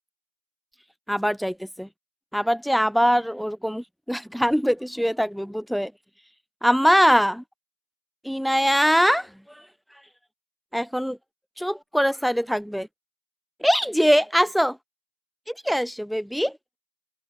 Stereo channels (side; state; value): both; identical; correlation 1.00